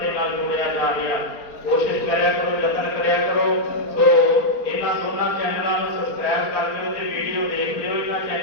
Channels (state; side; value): late; right; 4.4 ms